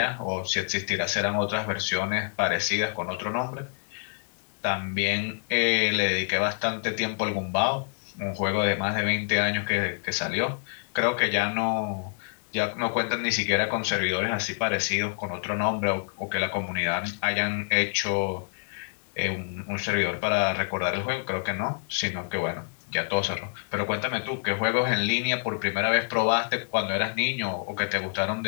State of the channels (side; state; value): right; silent; digital silence